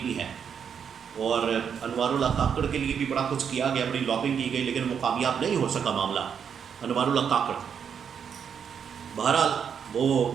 بھی ہیں، اور انوار اللہ کاکڑ کے لیے بھی بڑا کچھ کیا گیا، بڑی لابنگ کی گئی، لیکن وہ کامیاب نہیں ہو سکا معاملہ انوار اللہ کاکڑ۔ بہرحال وہ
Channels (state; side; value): quieter; left; 7.4 dB